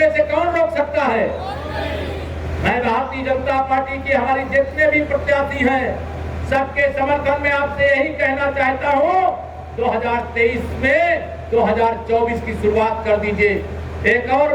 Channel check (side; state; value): both; identical; correlation 1.00